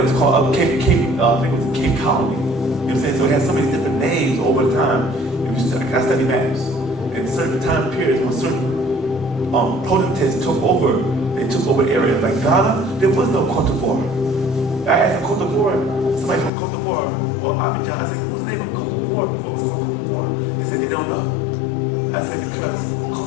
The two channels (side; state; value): right; drops out; at 16.5 s